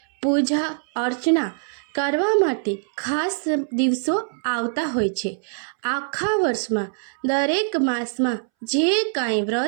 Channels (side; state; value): left; silent; 63 dB below the other